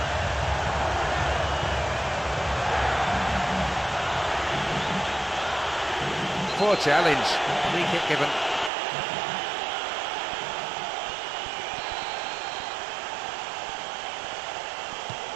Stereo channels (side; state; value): left; drops out; at 8.7 s